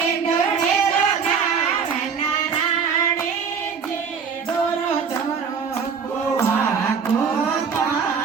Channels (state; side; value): quieter; left; 6.3 dB